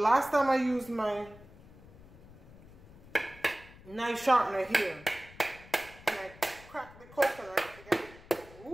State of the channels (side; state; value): left; noise; rumble, 21 dB below the sound